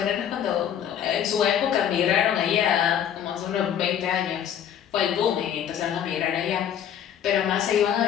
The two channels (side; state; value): right; quieter; 9.5 dB